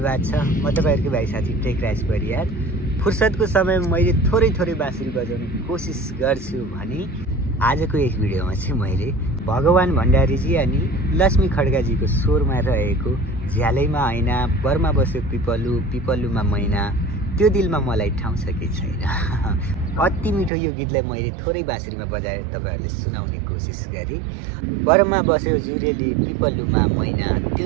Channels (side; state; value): left; drops out; at 20.5 s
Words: छ। म तपाईहरुको भाइ साथी टेकराज परियार। फुर्सदको समयमा मैले थोरै बाँसुरी बजाउने कोसिस गर्छु भने आजको यस भिडियोमा चाहिँ मैले भगवान भण्डारीजी अनि लक्ष्मी खड्गाजीको स्वरमा रहेको झ्यालैमा ऐना बरमा बस्यो पिपलु पिपलुमा मैना त्यो दिलमा मलाई ठाउँ छ कि छैन। अति मिठो यो गीतलाई मैले थोरै बाँसुरीमा बजाएर तपाईहरुले सुनाउने कोसिस गरे। बरमा बस्यो जुरेली पिपलुमा मैना त्यो